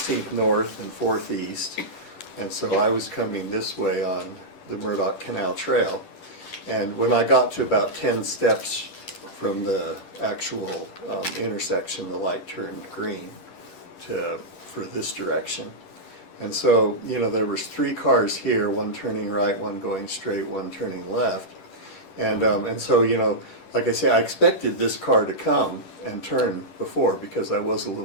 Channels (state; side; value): late; right; 10 ms